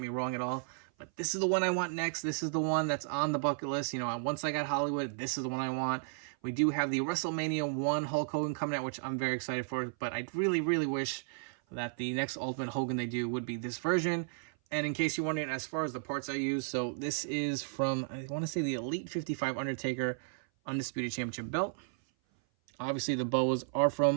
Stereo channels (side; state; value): left; silent; 55 dB below the other